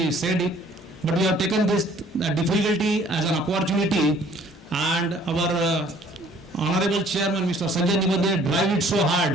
said it, but we have taken this difficulty as an opportunity, and our honorable chairman, Mr. Sanjay Nibandhe, drive it so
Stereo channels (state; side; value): normal; both; correlation 0.57